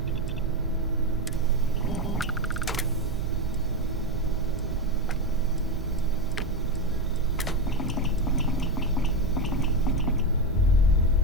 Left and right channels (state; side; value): normal; both; correlation 0.13